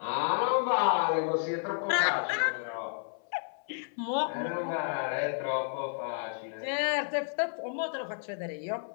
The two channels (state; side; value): silent; right; 57 dB below the other